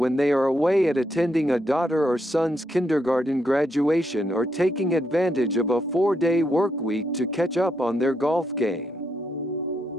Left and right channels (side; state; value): both; normal; correlation 0.79